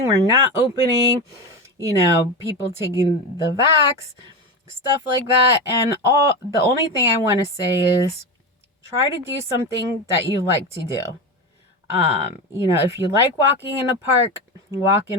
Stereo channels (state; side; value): normal; both; correlation 0.20